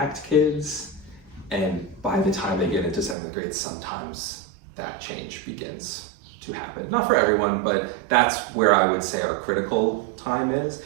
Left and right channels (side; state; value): left; drops out; at 3.2 s